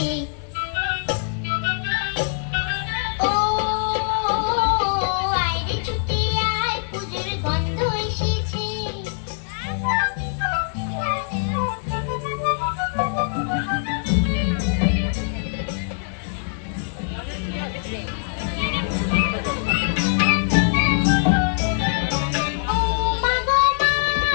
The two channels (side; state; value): right; silent; 64 dB below the other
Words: ও আয় রে ছুটে আয় পুজোর গন্ধ এসেছে।